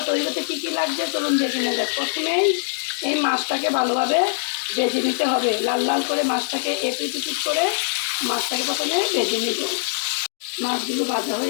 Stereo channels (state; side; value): silent; right; digital silence